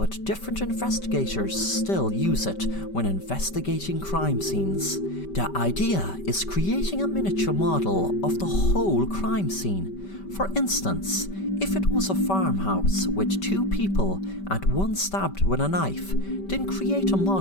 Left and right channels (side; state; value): right; late; 5.2 ms